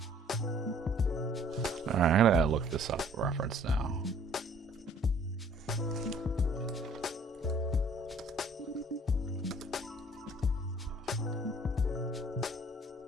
Alright, I'm gonna look this up reference now.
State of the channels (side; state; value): both; normal; correlation 0.57